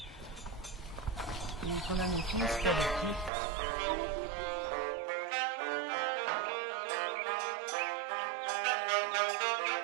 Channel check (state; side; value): drops out; left; at 3.3 s